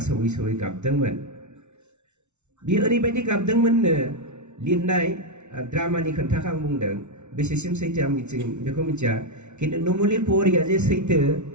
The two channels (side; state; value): left; late; 0.82 ms